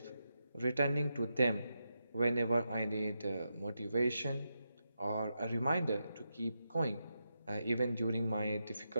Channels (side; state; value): both; inverted; correlation -0.86